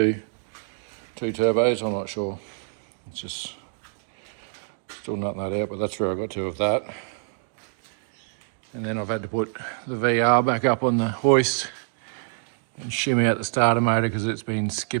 turbos, I'm not sure. It's just still nutting that out, but that's where I got to with that. And then I've had to put the VR back up on the hoist and shimmy out the starter motor because it's been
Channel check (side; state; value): left; silent; digital silence